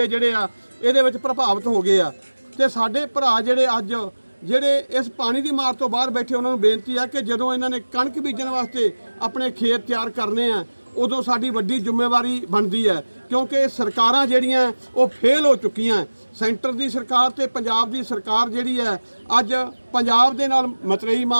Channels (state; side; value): inverted; both; correlation -1.00